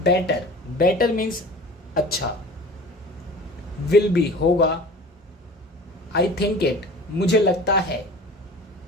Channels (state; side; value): normal; both; correlation 0.40